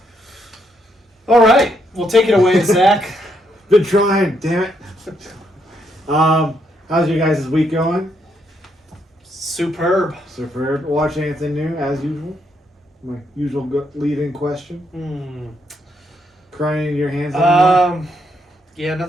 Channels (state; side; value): normal; both; correlation 0.76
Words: All right. Well, take it away, Zach. Been trying, damn it. How's your guys' week going? Superb. Superb. Watch anything new as usual? My usual lead-in question. Crying in your hands anymore? Yeah,